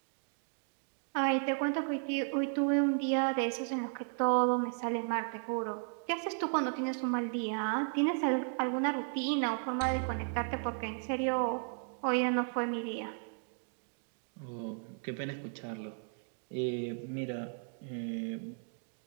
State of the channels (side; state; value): left; silent; 55 dB below the other